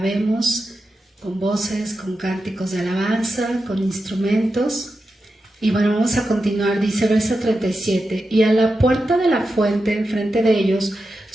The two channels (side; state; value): both; normal; correlation 0.90